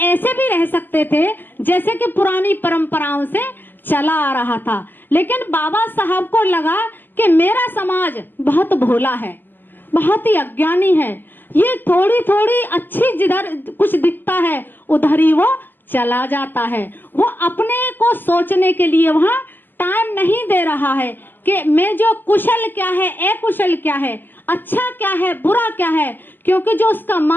ऐसे भी रह सकते थे जैसे कि पुरानी परंपराओं से चला आ रहा था, लेकिन बाबा साहब को लगा कि मेरा समाज बहुत भोला है, बहुत ही अज्ञानी है, ये थोड़ी थोड़ी अच्छी जिधर कुछ दिखता है उधर ही वो चला जाता है, वो अपने को सोचने के लिए वहाँ टाइम नहीं दे रहा है कि मैं जो कुशल क्या है, अकुशल क्या है, अच्छा क्या है, बुरा क्या है, क्योंकि जो उसका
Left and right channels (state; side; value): late; right; 0.091 ms